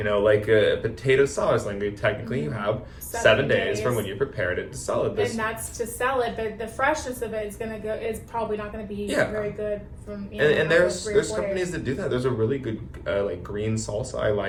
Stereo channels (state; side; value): identical; both; correlation 1.00